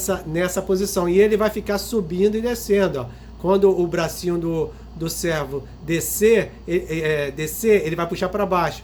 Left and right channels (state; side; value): identical; both; correlation 1.00